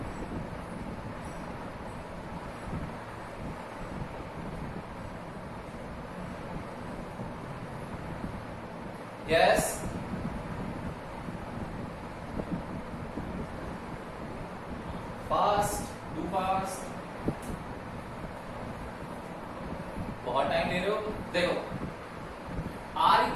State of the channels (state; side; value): identical; both; correlation 1.00